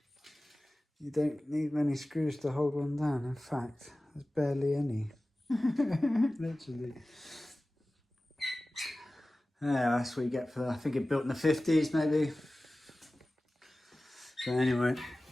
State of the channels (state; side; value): normal; both; correlation 0.97